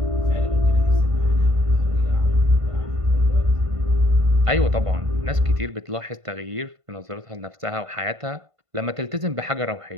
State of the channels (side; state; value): left; late; 1.5 ms